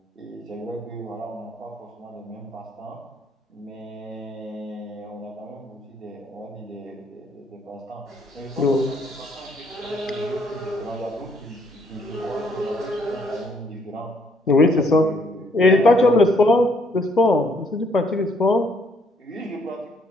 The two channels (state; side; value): normal; both; correlation 0.68